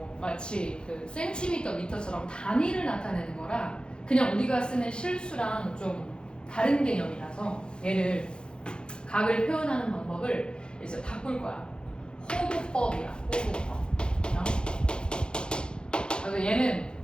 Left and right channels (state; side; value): late; right; 0.050 ms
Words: 마치 그 센티미터, 미터처럼 단위를 나타내는 거라 그냥 우리가 쓰는 실수랑 좀 다른 개념이라서 얘를 각을 표현하는 방법을 이제 바꿀 거야. 호도법이야. 호도법. 그래서 얘는